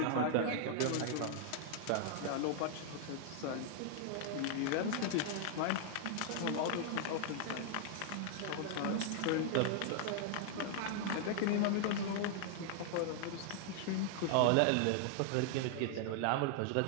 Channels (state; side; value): different; both; correlation -0.01